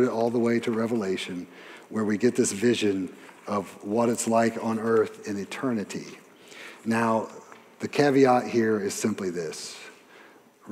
it all the way to Revelation, where we get this vision of what it's like on earth in eternity. Now, the caveat here is simply this.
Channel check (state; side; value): identical; both; correlation 1.00